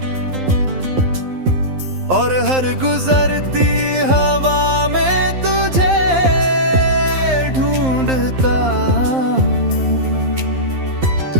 और हर गुजरती हवा में तुझे ढूंढता हूँ।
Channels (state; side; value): late; left; 11 ms